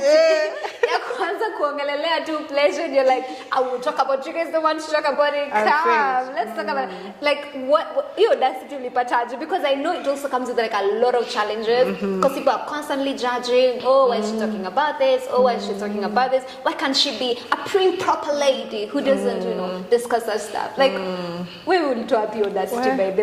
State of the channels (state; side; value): identical; both; correlation 1.00